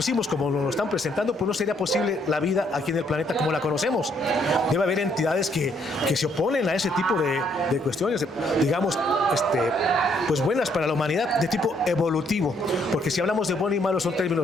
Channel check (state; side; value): normal; both; correlation 0.69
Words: como nos lo están presentando, pues no sería posible la vida aquí en el planeta como la conocemos. Debe haber entidades que se oponen a ese tipo de cuestiones, digamos, pues buenas para la humanidad, de tipo evolutivo, porque si hablamos de bueno y malo son